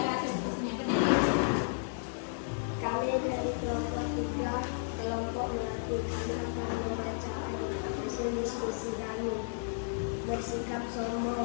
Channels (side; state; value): right; silent; digital silence